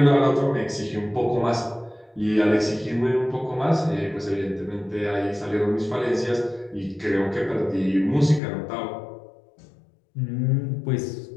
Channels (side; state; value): right; drops out; at 8.4 s